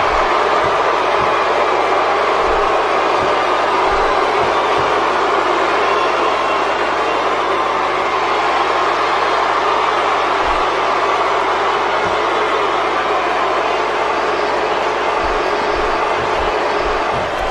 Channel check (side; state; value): right; noise; hum, 18 dB below the sound